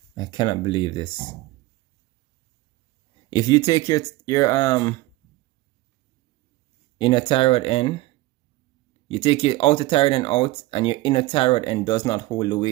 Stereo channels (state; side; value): quieter; left; 18.8 dB